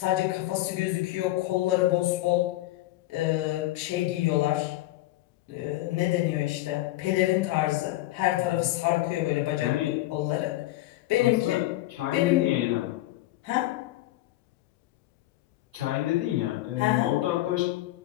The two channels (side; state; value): right; quieter; 16.8 dB